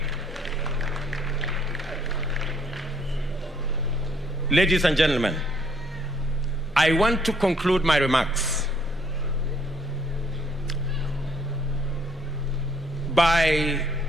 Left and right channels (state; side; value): normal; both; correlation 0.66